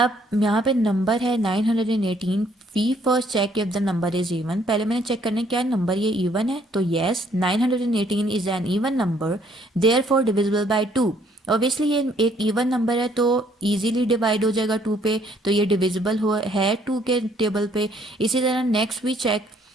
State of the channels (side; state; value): both; normal; correlation 0.65